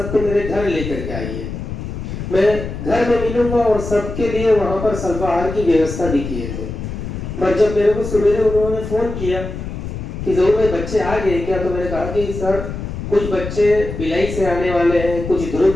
मेरे घर लेकर के आइए, मैं घर में मिलूंगा और सबके लिए वहां पर अल्पाहार की व्यवस्था भी किए थे। पर जब मेरे को सवेरे उन्होंने फोन किया कि जरूर भाई बच्चे आ गए क्या, तो मैंने कहा कि सर कुछ बच्चे भिलाई से आने वाले हैं, कुछ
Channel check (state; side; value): noise; left; rumble, 7 dB below the sound